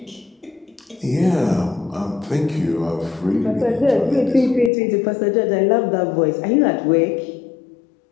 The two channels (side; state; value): right; drops out; at 4.7 s